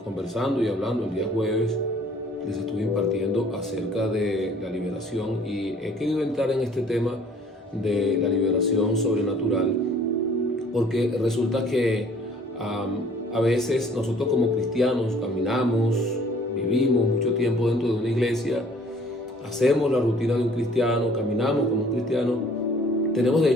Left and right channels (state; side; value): normal; both; correlation 0.55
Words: conversando y hablando el día jueves, les estuve impartiendo acerca de la liberación y he querido entrar en este tema de la liberación sobrenatural porque resulta que a veces nosotros como cristianos caminamos, vivimos mucho tiempo dentro de una iglesia, hacemos la rutina de un cristiano, caminamos como un cristiano, tenemos de